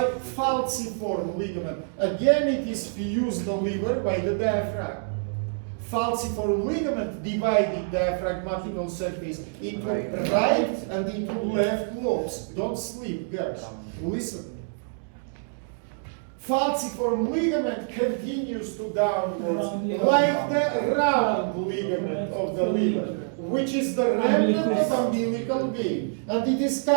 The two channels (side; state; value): left; silent; digital silence